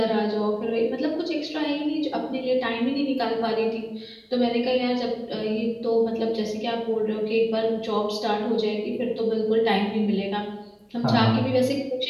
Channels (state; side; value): identical; both; correlation 1.00